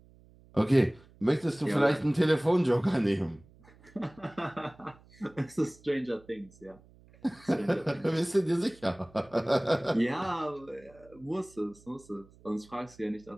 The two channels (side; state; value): right; noise; hum, 26 dB below the sound